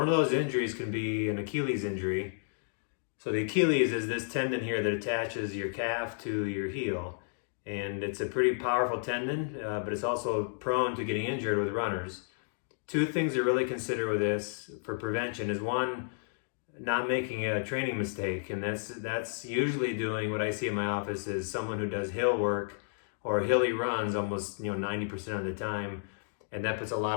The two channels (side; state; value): right; silent; digital silence